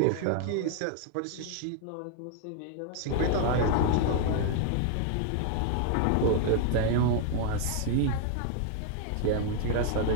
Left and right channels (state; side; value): different; both; correlation 0.00